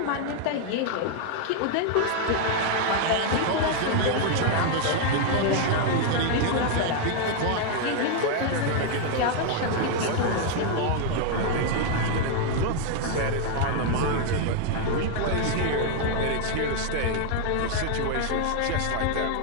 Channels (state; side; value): different; both; correlation 0.00